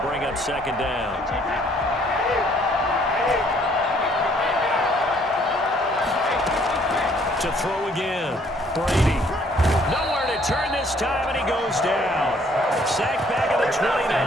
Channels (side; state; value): both; normal; correlation 0.62